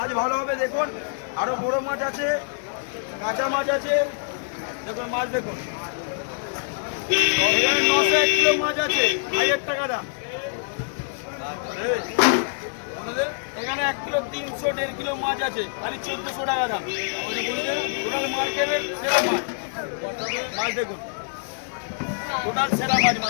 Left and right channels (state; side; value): silent; right; digital silence